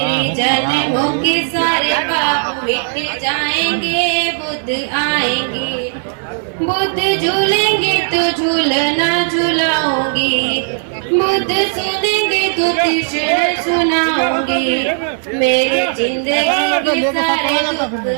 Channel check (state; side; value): silent; left; 69 dB below the other